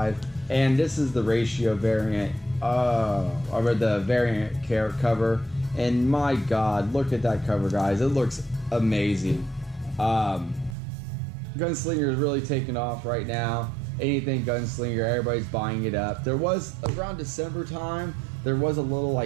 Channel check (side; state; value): left; drops out; at 10.8 s